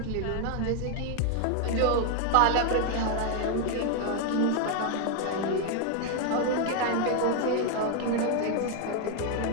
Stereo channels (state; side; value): different; both; correlation 0.01